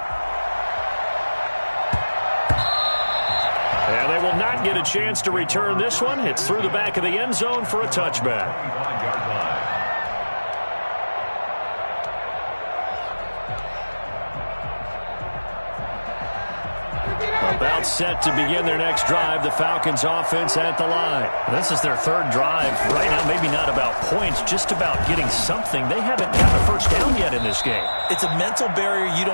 And they will not get a chance to return this one. It's through the back of the end zone for a touchback. About set to begin their next drive. The Falcons offense at the line. This is their 3rd drive. Right now, maybe not about points, just about getting something. They haven't gotten a 1st down yet in this game. It's a mental barrier you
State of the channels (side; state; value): both; inverted; correlation -1.00